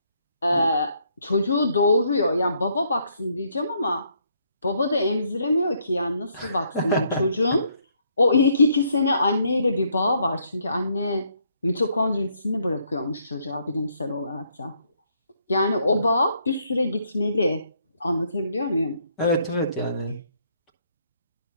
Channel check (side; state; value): both; inverted; correlation -0.71